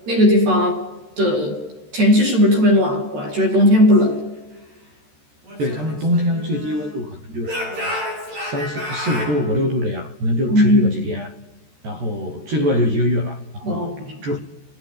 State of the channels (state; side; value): late; left; 13 ms